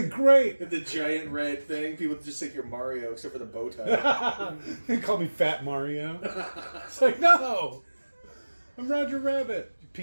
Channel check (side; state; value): both; inverted; correlation -1.00